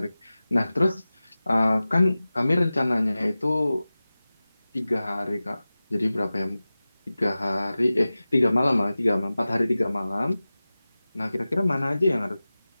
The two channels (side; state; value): both; inverted; correlation -0.96